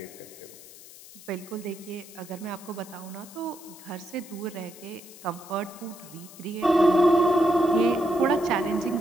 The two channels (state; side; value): noise; left; hiss, 18 dB below the sound